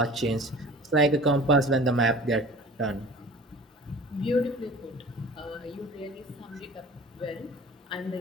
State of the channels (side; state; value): both; normal; correlation 0.42